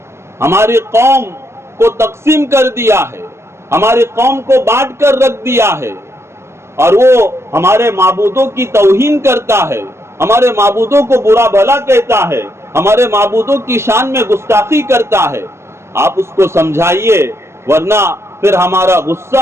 ہماری قوم کو تقسیم کر دیا ہے، ہماری قوم کو بانٹ کر رکھ دیا ہے، اور وہ ہمارے معبودوں کی توہین کرتا ہے، ہمارے معبودوں کو برا بھلا کہتا ہے، ہمارے معبودوں کی شان میں گستاخی کرتا ہے، آپ اس کو سمجھائیے ورنہ پھر ہمارا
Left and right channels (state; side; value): late; left; 0.13 ms